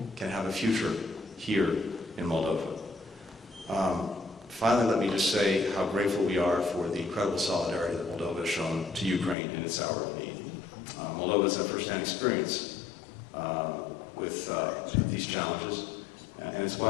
can have a future here in Moldova. Finally, let me just say how grateful we are for the incredible solidarity that Moldova has shown to Ukraine in its hour of need. Moldova has had first-hand experience with these challenges, and it's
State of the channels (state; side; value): drops out; right; at 9.3 s